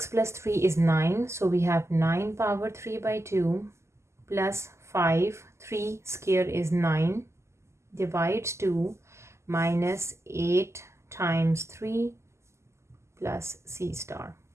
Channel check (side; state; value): left; late; 0.13 ms